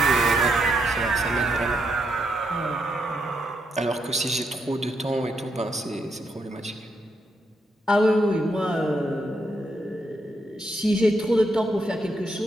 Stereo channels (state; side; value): normal; both; correlation 0.79